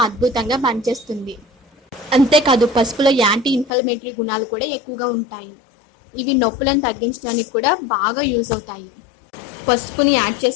అద్భుతంగా పనిచేస్తుంది. అంతేకాదు పసుపులో యాంటీ ఇన్ఫ్లమేటరీ గుణాలు కూడా ఎక్కువగా ఉంటాయి. ఇవి నొప్పులను తగ్గించడానికి కూడా బాగా యూజ్ అవుతాయి. పసుపుని యాడ్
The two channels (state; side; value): drops out; right; at 3.7 s